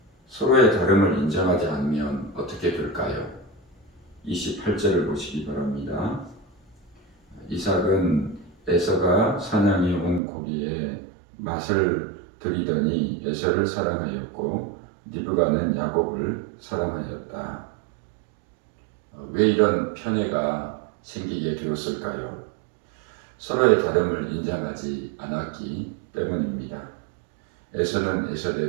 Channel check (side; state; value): left; drops out; at 10.2 s